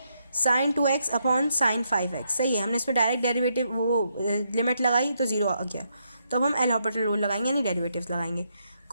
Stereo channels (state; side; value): inverted; both; correlation -0.78